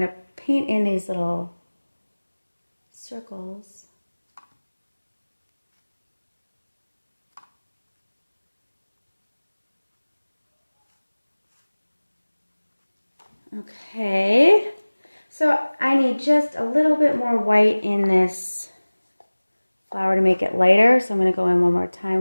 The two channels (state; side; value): inverted; both; correlation -1.00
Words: to paint in these little circles. Okay, so I need just a little bit more white in this flower to make it lighter. So I'm going to go in one more